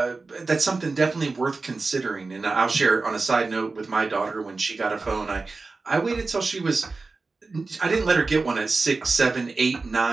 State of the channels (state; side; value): quieter; left; 3.9 dB